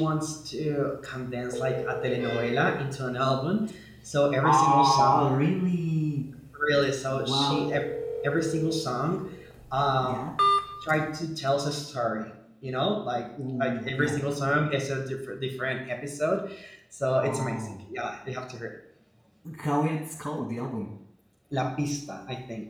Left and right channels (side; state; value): both; identical; correlation 1.00